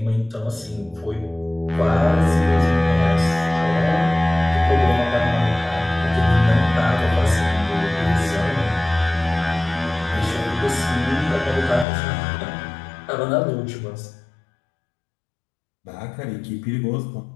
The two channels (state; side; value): drops out; right; at 11.9 s